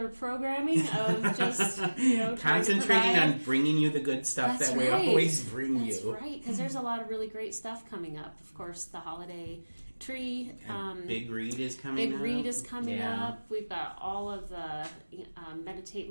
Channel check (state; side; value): inverted; both; correlation -1.00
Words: programming of just, trying to Concentrating provide. on bringing you the good stuff That's that we right. always bring That's you. right, because there's a lot of really great stuff coming up. Of course, the holiday tree. Big Read is coming up. Big Read is coming Yeah. up. We've got all of the Meditate